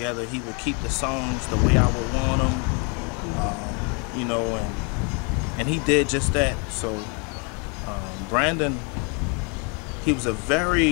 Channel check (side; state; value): right; quieter; 34.1 dB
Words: He would keep the songs the way I would want them, you know, and he did just that. So Brandon, he was a